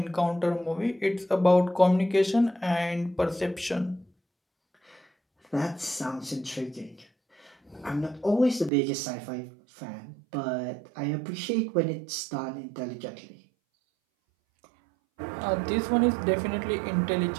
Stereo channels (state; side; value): drops out; left; at 8.7 s